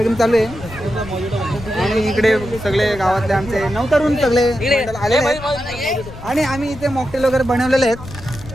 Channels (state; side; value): noise; left; rumble, 15 dB below the sound